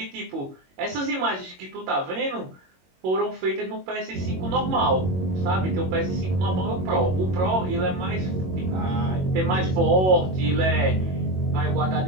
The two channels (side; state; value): left; late; 22 ms